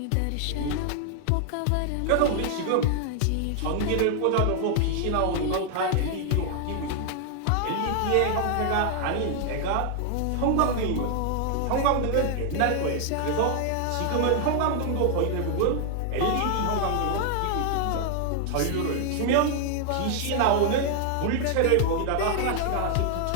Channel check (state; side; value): different; both; correlation 0.00